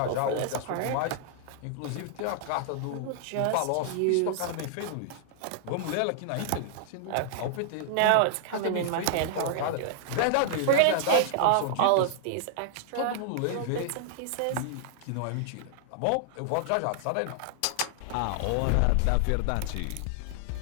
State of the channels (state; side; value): different; both; correlation -0.01